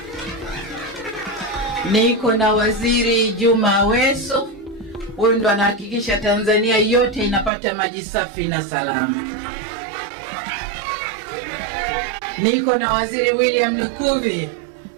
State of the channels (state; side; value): drops out; left; at 7.5 s